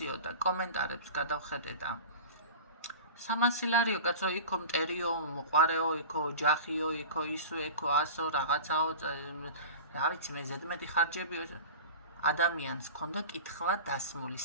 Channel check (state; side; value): inverted; both; correlation -0.36